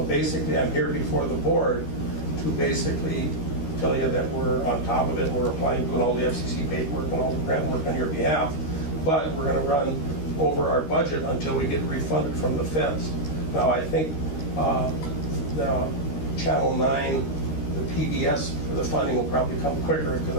basically, I'm here before the board to basically tell you that we're on top of it. We're applying, doing all the FCC paperwork and all the grant work on your behalf. But we're going to run over our budget until we get refunded from the feds. Now, I think the Channel 9, the PBS for the funding will probably come quicker because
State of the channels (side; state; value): right; late; 13 ms